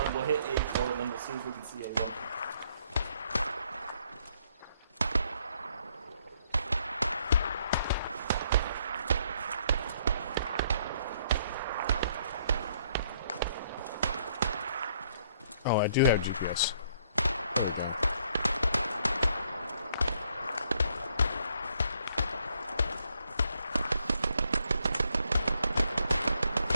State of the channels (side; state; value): both; inverted; correlation -0.68